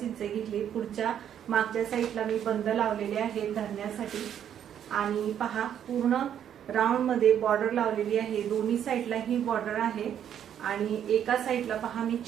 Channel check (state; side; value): quieter; left; 9.5 dB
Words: इंच घेतली। पुढच्या मागच्या साईडला मी बंद लावलेले आहे धरण्यासाठी आणि पहा पूर्ण राऊंड मध्ये बॉर्डर लावलेली आहे। दोन्ही साईडला ही बॉर्डर आहे आणि एका साईडला पहा मी